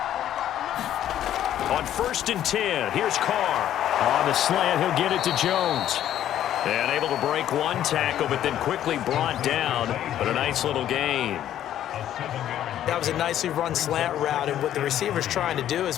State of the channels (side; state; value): right; quieter; 11.5 dB